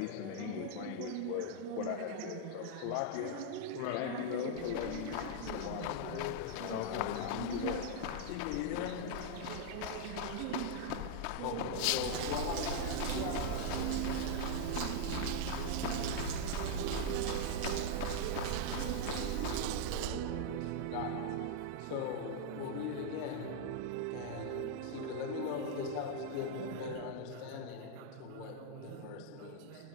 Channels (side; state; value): both; different; correlation -0.01